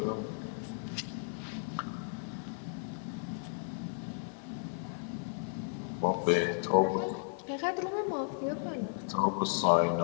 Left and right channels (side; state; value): right; silent; 55 dB below the other